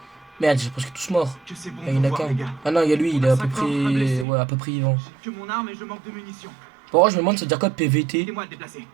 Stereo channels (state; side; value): drops out; left; at 4.2 s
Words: Merde, j'ai presque tous morts. que c'est bon Ah, il y en a de vous voir, qu'un. les gars. Ah non, il y a lui, il est à peu On a 5 morts, un près. blessé. Ouais, à peu près vivant. J'ai que mon arme et je manque de munitions. Bon, je me demande, ça veut dire quoi PVT? Aidez-moi à le déplacer.